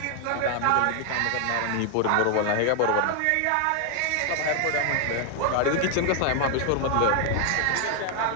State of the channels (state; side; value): different; both; correlation 0.00